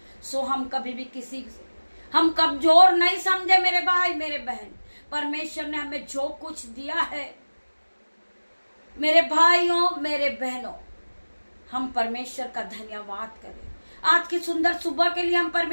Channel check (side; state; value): both; inverted; correlation -1.00